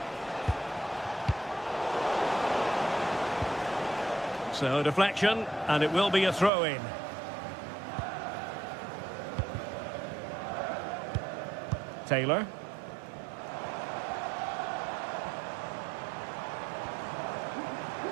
So deflection, and it will be a throw-in. Taylor.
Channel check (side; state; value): left; drops out; at 6.5 s